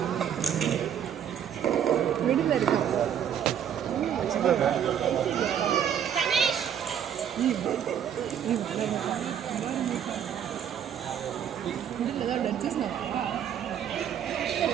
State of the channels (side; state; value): left; quieter; 9.1 dB